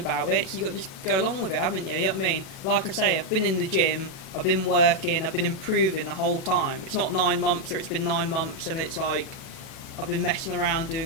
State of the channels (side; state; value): right; late; 37 ms